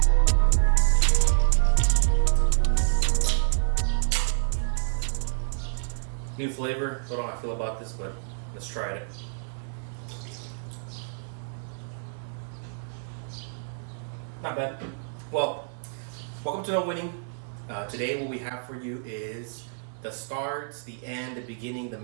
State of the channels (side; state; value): left; silent; digital silence